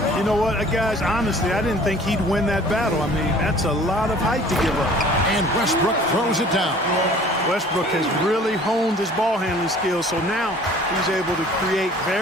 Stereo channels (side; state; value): both; normal; correlation 0.50